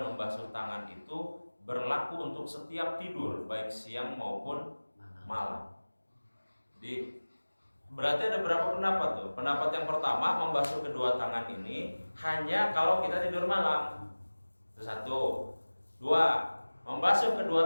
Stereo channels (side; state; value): both; inverted; correlation -1.00